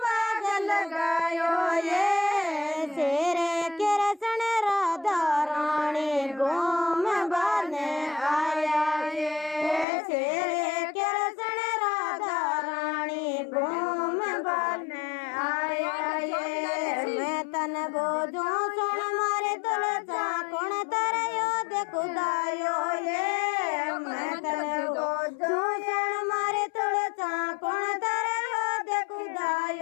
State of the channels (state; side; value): drops out; right; at 9.9 s